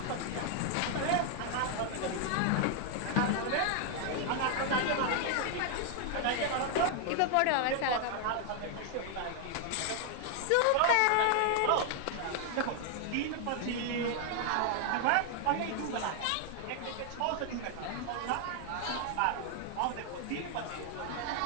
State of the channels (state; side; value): different; both; correlation 0.00